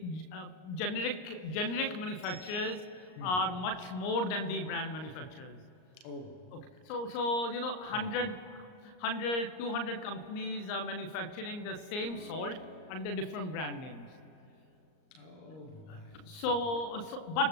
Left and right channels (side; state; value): right; late; 38 ms